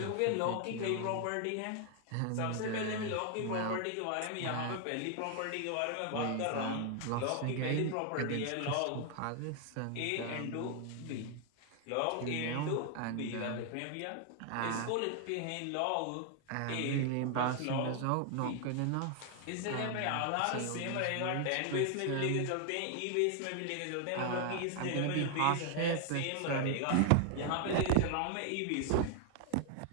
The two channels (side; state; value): both; different; correlation 0.00